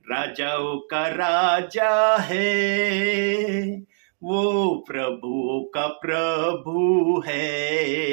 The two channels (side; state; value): left; silent; digital silence